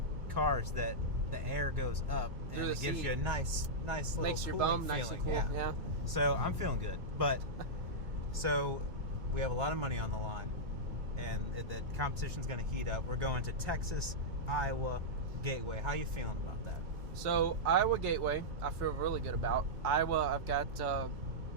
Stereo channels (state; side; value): late; left; 2.3 ms